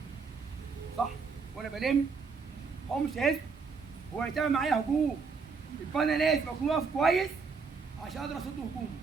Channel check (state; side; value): quieter; left; 5.1 dB